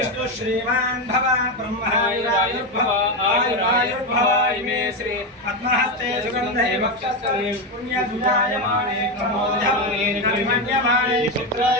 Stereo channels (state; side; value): normal; both; correlation 0.11